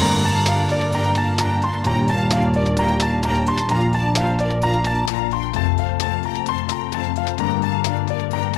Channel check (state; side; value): drops out; right; at 5.1 s